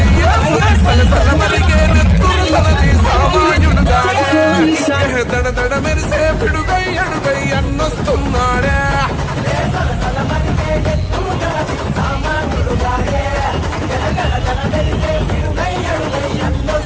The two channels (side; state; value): both; identical; correlation 1.00